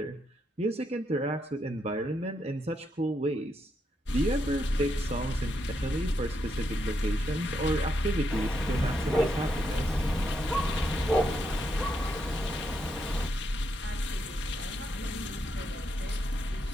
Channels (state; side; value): normal; both; correlation 0.80